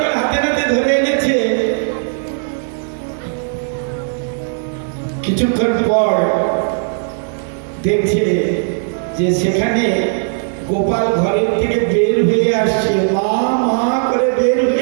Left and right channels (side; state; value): left; silent; 68 dB below the other